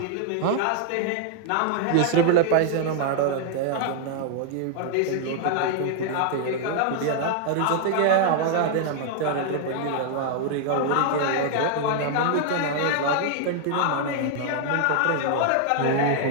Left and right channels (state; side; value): different; both; correlation -0.01